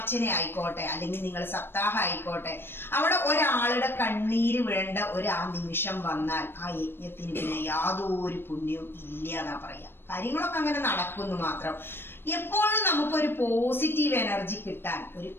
ആയിക്കോട്ടെ അല്ലെങ്കിൽ നിങ്ങൾ സപ്താഹം ആയിക്കോട്ടെ, അവിടെ ഒരാളുടെ കണ്ണീര് വീഴേണ്ട ആ നിമിഷം വന്നാൽ ആ യജ്ഞത്തിന് പിന്നെ യാതൊരു പുണ്യവും ഇല്ല എന്നാ പറയാ. കാര്യങ്ങളൊക്കെ അങ്ങനെ നടക്കുന്നു മാത്രം. എപ്പോഴും നമുക്കൊരു പോസിറ്റീവ് എനർജി കിട്ടാൻ ഒരു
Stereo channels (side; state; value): right; late; 0.10 ms